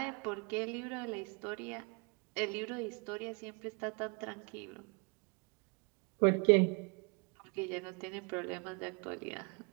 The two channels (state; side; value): quieter; left; 34.0 dB